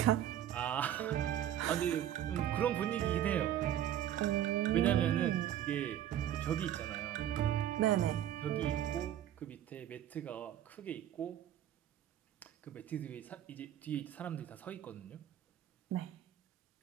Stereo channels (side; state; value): left; quieter; 11.2 dB